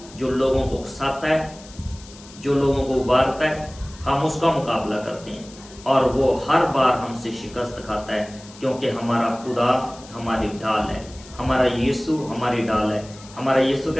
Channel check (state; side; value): noise; left; hiss, 20 dB below the sound